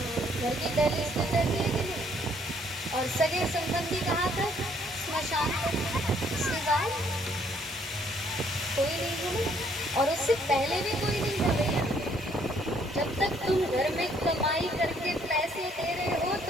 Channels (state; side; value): normal; both; correlation 0.65